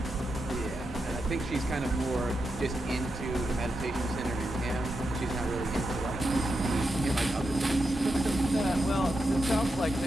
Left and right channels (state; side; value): normal; both; correlation 0.87